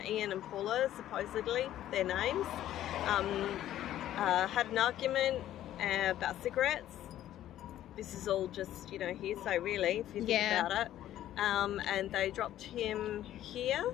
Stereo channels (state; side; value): quieter; right; 12.6 dB